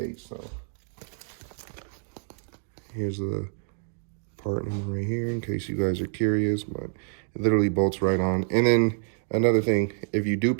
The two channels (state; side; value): silent; left; digital silence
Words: So here's the part number right here in case you guys are curious, but it literally bolts right on. And then another thing, if you do